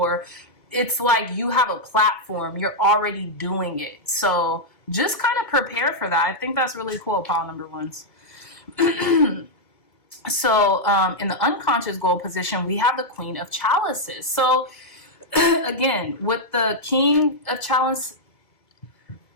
It's like you have a platform, you're already doing it. So just kind of prepare for that. I think that's really cool, pile number ones. So in the unconscious goal position, we have the Queen of Chalices. So again, with the King of Chalices,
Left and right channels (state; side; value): late; right; 2.3 ms